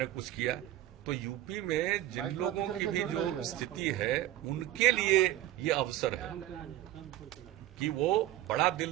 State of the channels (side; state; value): left; quieter; 14.3 dB